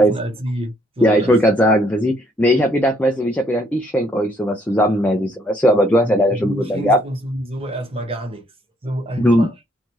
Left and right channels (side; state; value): both; normal; correlation 0.68